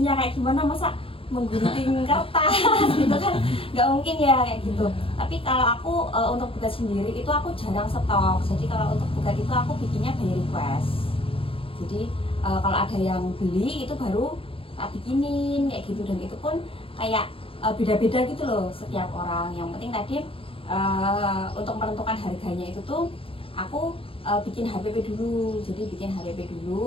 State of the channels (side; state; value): right; late; 0.27 ms